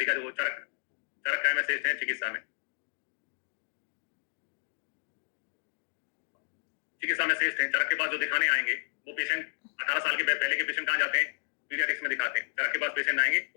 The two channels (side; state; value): right; silent; digital silence